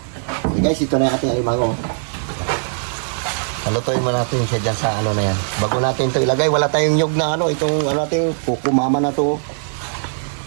Okay guys, ito na yung ating alimango. Halutuin mo natin siya dyan sa ano na yan. Bago natin ito ilagay, wala tayong nyug na ano. Itong ano natin, kukumama na ito.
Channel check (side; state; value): left; silent; digital silence